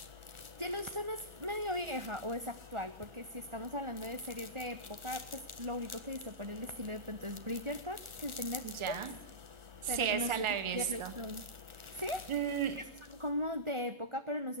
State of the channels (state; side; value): late; left; 1.4 ms